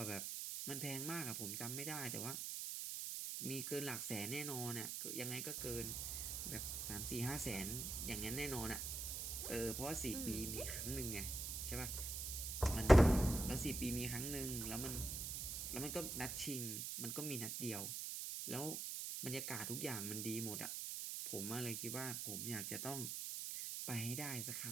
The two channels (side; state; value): right; noise; hiss, 3 dB below the sound